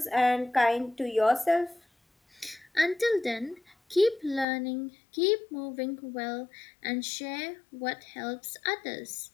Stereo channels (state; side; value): drops out; right; at 4.5 s